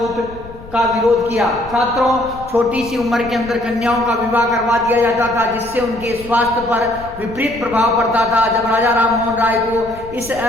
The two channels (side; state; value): left; noise; rumble, 17 dB below the sound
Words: का विरोध किया। छात्रों, छोटी सी उम्र के अंदर कन्याओं का विवाह करवा दिया जाता था जिससे उनके स्वास्थ्य पर विपरीत प्रभाव पड़ता था। जब राजा राम मोहन राय को इस